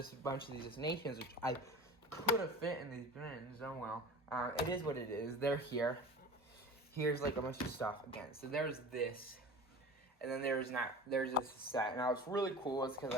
a bunch of these destinations, which I could have fit in these bins. Oh well. It is what it is. They're here. Here's like a bunch of stuff again. So there's this. And then there's this set. Now it's really cool. It's because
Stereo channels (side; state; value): both; normal; correlation 0.36